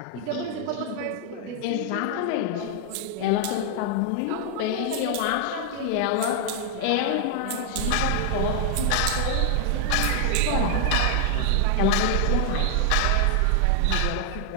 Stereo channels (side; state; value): both; different; correlation 0.00